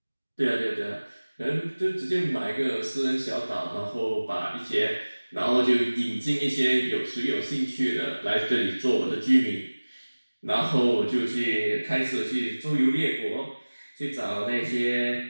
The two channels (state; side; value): inverted; both; correlation -1.00